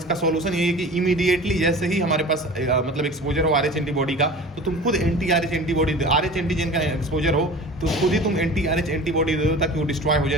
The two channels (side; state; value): both; normal; correlation 0.39